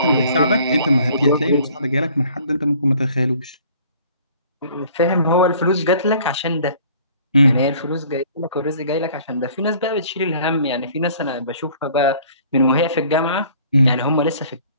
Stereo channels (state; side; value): inverted; both; correlation -0.54